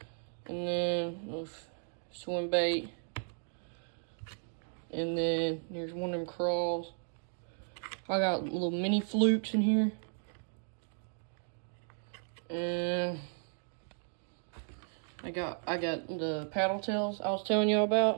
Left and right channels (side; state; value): left; silent; 54 dB below the other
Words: and then swim bait. And then here's one of them crawls. I got little mini flukes in here. And I got the paddle tails I was telling you